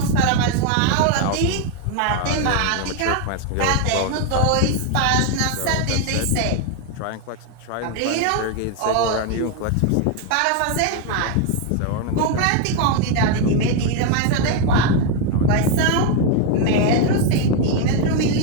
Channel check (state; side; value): different; both; correlation 0.01